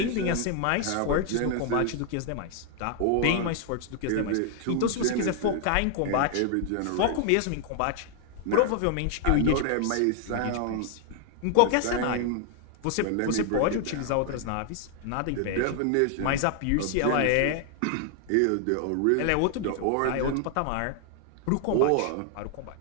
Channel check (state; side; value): different; both; correlation 0.00